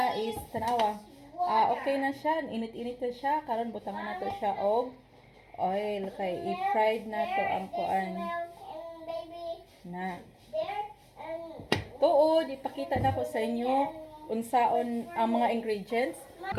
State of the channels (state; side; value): identical; both; correlation 1.00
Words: is tanawa. Okay na siya, init-init na siya. Karon butangan nato siya og oil kay i-fried nato ang kuan na. Tuod, ipakita na ko sa inyo unsaon ang mga ingredients.